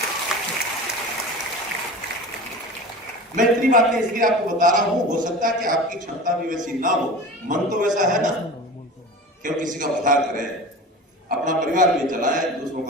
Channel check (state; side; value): normal; both; correlation 0.34